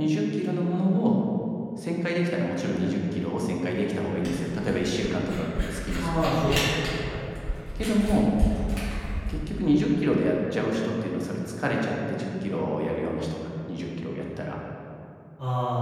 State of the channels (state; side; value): identical; both; correlation 1.00